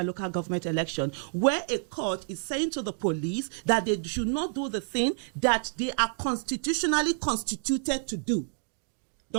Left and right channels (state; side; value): silent; left; digital silence